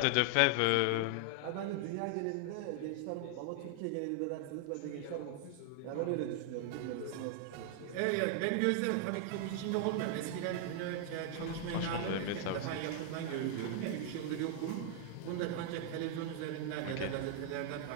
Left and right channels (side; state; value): both; different; correlation 0.00